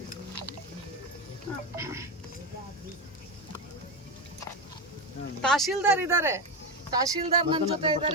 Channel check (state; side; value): normal; both; correlation 0.14